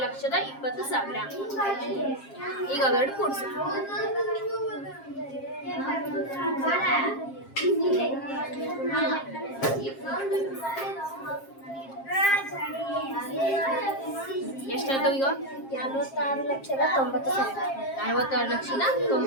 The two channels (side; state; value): right; late; 7.5 ms